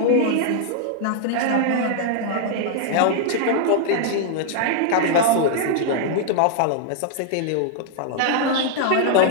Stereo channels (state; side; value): different; both; correlation -0.01